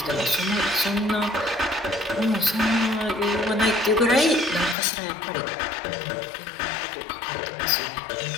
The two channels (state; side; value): drops out; right; at 4.8 s